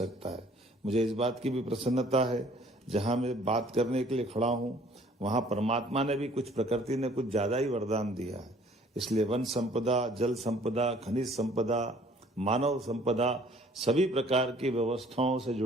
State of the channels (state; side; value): normal; both; correlation 0.56